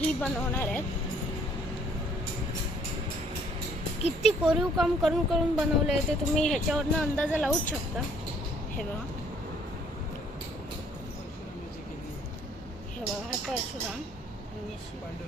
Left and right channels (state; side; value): normal; both; correlation 0.61